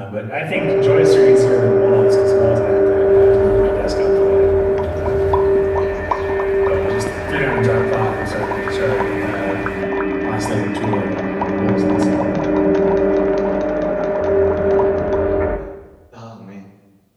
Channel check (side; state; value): both; identical; correlation 1.00